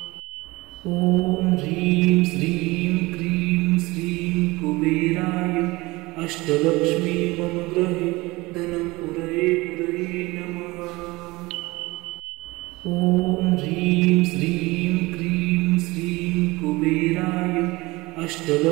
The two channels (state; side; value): quieter; left; 21.7 dB